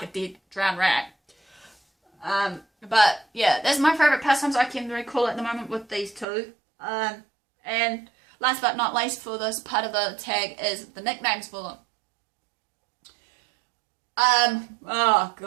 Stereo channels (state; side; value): drops out; left; at 6.2 s